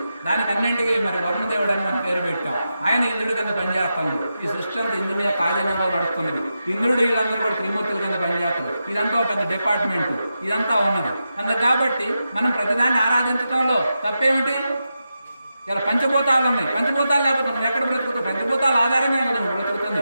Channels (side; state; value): both; inverted; correlation -0.89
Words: దానికి అన్నింటికి మరి వరుణదేవుడు అని మనం పేరు పెట్టాం. ఆయన ఇంద్రుడి కింద పనిచేస్తాడు. ఈ సృష్టి అంతా ఇంద్రుని కార్యంలో నడుస్తున్నది. ఇంద్రుడు వీళ్ళందరూ కూడా త్రిమూర్తుల కింద పనిచేస్తారు. ఇదంతా పెద్ద డిపార్ట్మెంట్, ఇదంతా ఉన్నది. అందుకు కాబట్టి మనం ప్రతిదాన్ని ఆరాధించడంలో తప్పేమిటి? ఇలా పంచభూతాలు ఉన్నాయి. పంచభూతాలు లేకపోతే మనం ఎక్కడ బ్రతుకుతాం? పంచభూతాల ఆధారంగా కదా మనం బ్రతుకుతుంది.